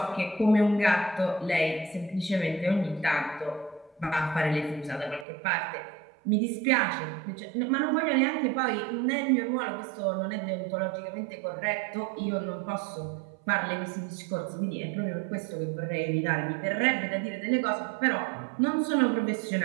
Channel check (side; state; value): left; drops out; at 5.2 s